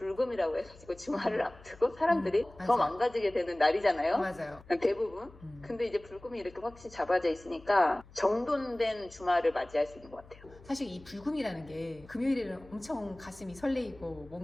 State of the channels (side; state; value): left; noise; hum, 22 dB below the sound